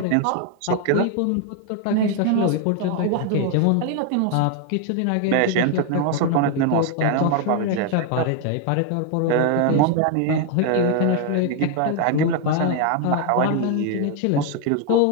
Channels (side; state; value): both; different; correlation 0.00